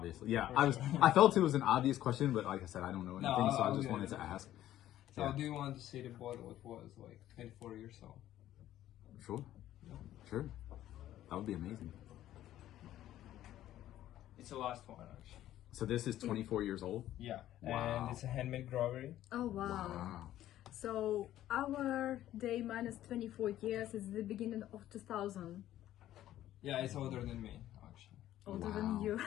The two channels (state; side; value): quieter; right; 13.1 dB